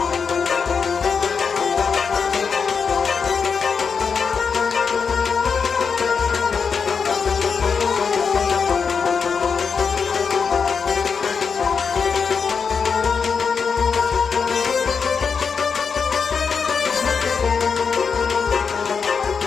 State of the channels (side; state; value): right; quieter; 5.9 dB